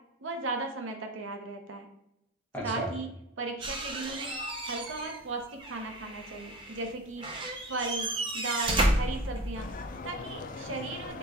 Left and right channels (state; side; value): normal; both; correlation 0.31